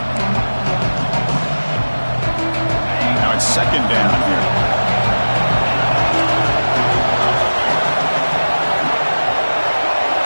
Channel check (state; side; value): inverted; both; correlation -1.00